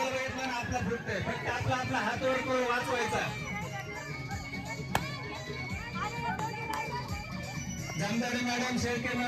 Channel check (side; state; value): both; identical; correlation 1.00